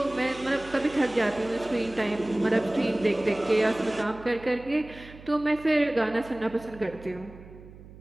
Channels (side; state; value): right; noise; hum, 19 dB below the sound